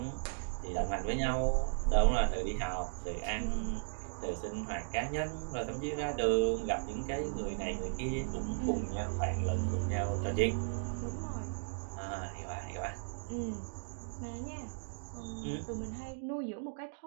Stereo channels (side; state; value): left; silent; digital silence